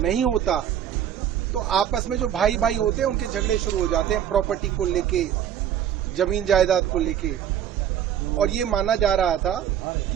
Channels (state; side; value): quieter; left; 9.9 dB